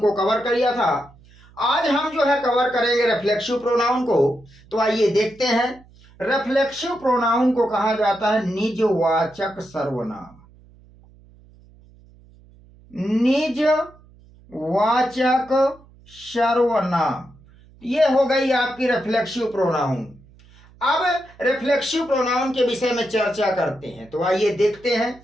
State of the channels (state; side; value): noise; right; hum, 26 dB below the sound